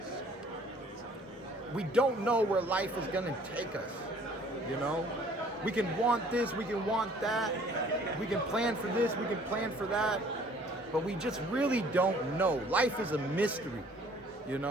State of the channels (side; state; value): both; normal; correlation 0.56